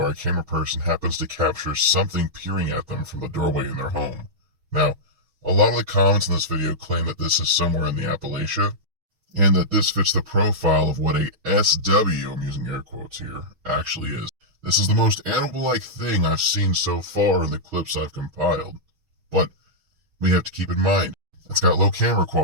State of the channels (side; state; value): left; late; 6.3 ms